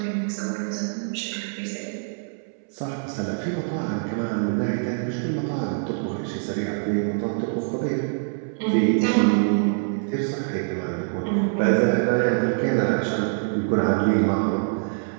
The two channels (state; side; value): silent; left; 62 dB below the other